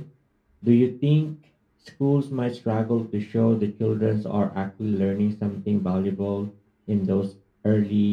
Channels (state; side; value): identical; both; correlation 1.00